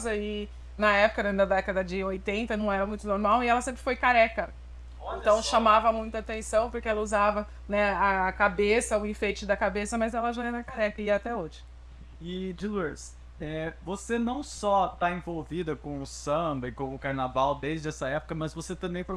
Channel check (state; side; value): identical; both; correlation 1.00